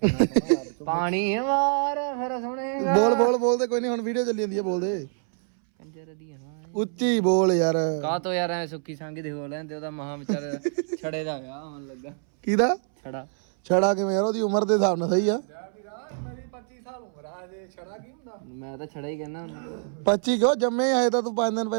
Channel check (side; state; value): left; silent; 61 dB below the other